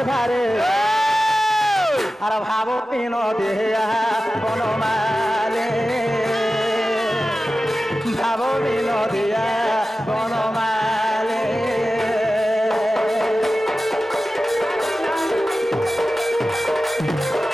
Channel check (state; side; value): normal; both; correlation 0.94